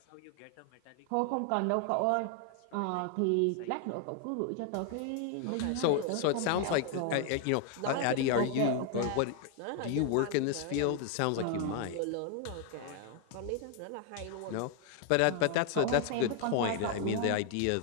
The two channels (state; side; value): different; both; correlation 0.00